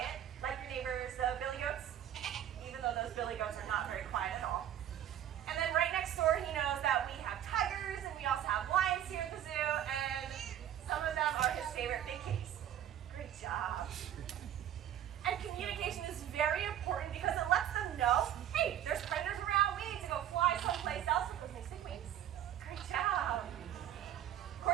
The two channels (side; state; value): left; quieter; 10.9 dB